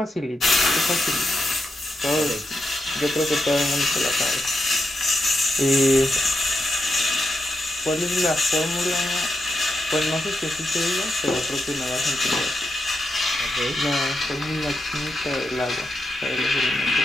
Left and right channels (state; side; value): normal; both; correlation 0.86